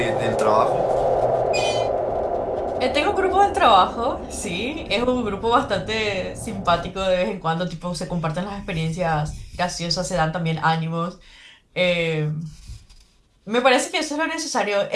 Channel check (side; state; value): both; identical; correlation 1.00